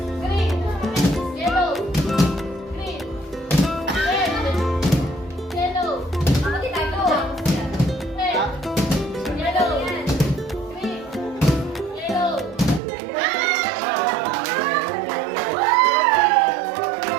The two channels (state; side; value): drops out; left; at 12.8 s